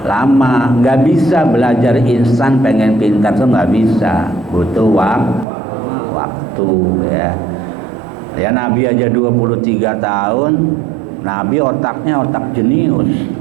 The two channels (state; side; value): drops out; left; at 5.5 s